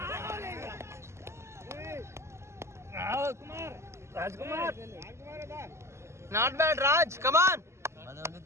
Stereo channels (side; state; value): left; late; 0.13 ms